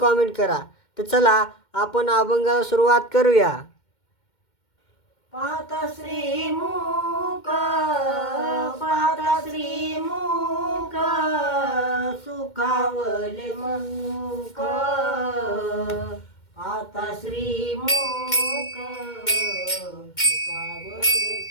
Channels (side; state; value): right; late; 2.1 ms